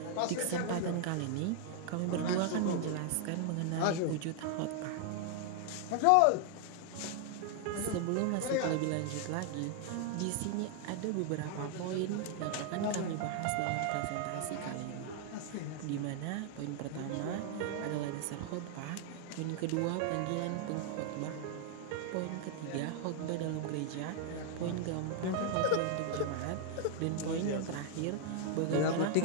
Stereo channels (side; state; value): both; different; correlation 0.00